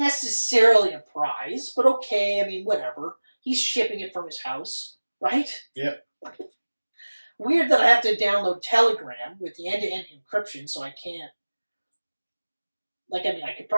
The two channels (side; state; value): both; inverted; correlation -1.00